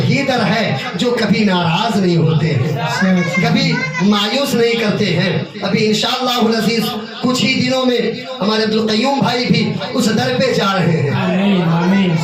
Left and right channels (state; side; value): identical; both; correlation 1.00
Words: दर है जो कभी नाराज नहीं होते हैं, कभी मायूस नहीं करते हैं। अभी इंशाअल्लाह अज़ीज़ कुछ ही दिनों में हमारे अब्दुल क़य्यूम भाई भी उस दर पे जा रहे हैं,